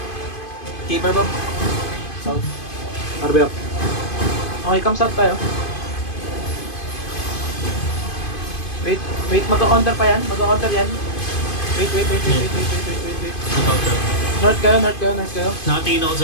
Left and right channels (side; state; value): right; late; 2.5 ms